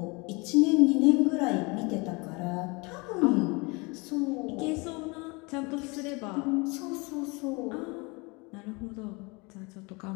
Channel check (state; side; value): quieter; right; 27.8 dB